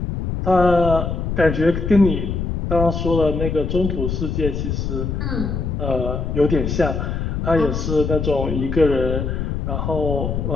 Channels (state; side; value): noise; left; rumble, 2 dB below the sound